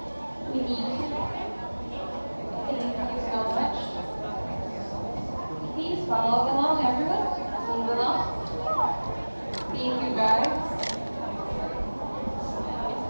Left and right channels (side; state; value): both; inverted; correlation -1.00